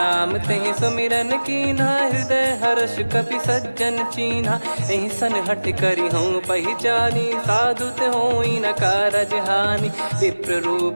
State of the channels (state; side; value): inverted; both; correlation -1.00